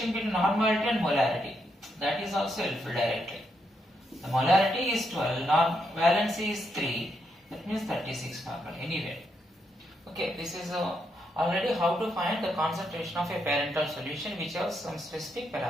between normality and molarity. That is also helpful directly. The molarity is 12, valency is 3. That means 36 normal anyway. Okay, this is already how to find the concentration of a parental solution which has some specific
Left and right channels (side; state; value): both; normal; correlation 0.79